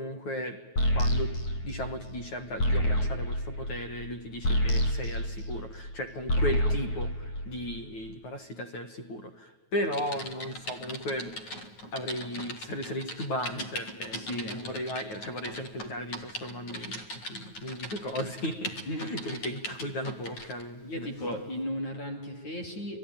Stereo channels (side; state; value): right; late; 9.3 ms